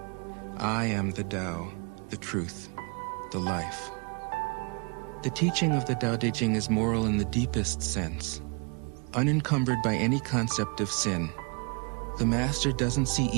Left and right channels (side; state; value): left; quieter; 33.8 dB